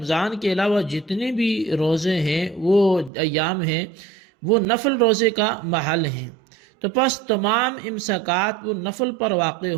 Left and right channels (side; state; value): left; drops out; at 3.1 s